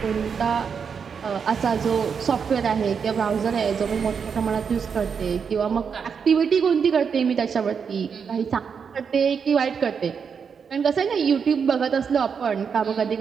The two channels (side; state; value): left; quieter; 6.4 dB